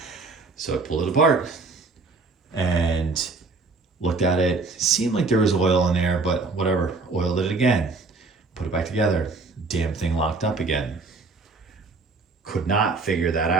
So I pulled it apart and looked at it. Seemed like there was oil in there, but whatever. Oiled it again. Put it back together. Damn thing locked up again. Could not figure that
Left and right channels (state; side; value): quieter; left; 3.9 dB